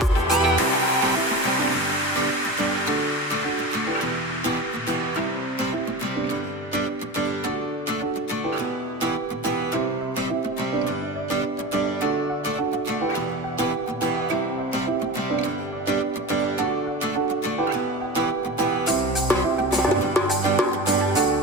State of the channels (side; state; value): both; normal; correlation 0.30